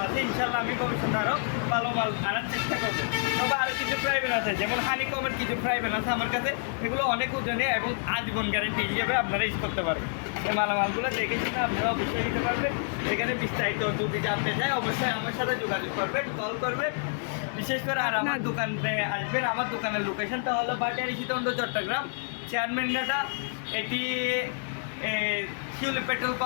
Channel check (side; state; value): right; silent; digital silence